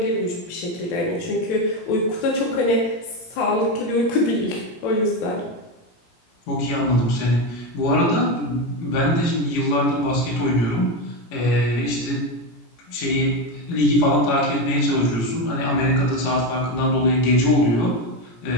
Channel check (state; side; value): late; right; 17 ms